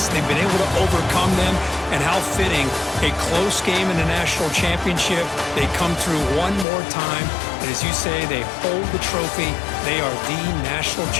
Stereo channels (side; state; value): right; drops out; at 6.7 s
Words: They've been able to overcome them. And how fitting, a close game in the national championship. They come through one more time. And as you say, they hold the trophy. They are the national